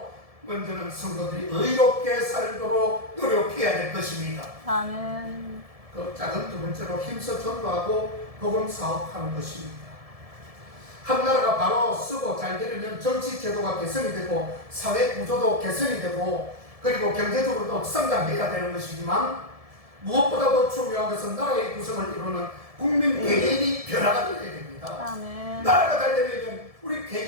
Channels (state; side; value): late; left; 1.7 ms